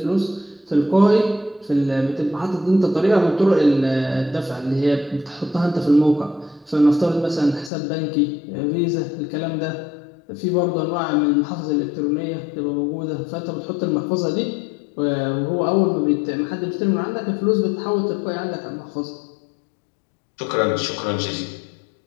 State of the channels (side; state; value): right; drops out; at 7.7 s